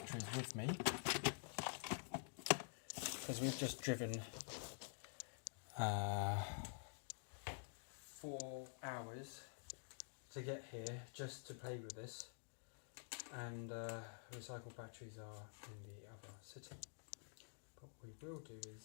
with me because we've just driven 4 hours to get here just to play with this, and recycled batteries are in the other city. But what we will do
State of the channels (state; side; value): silent; right; digital silence